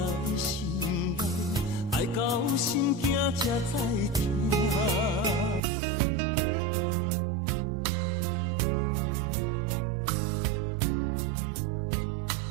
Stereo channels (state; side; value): drops out; left; at 5.6 s